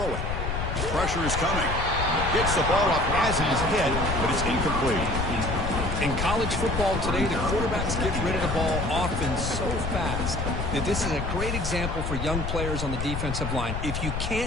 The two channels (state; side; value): noise; left; rumble, 3 dB below the sound